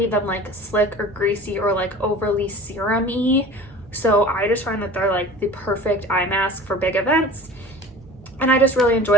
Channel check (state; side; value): noise; right; hum, 24 dB below the sound